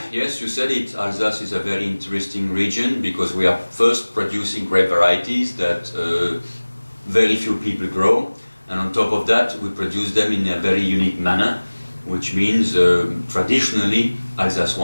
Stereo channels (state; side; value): inverted; both; correlation -1.00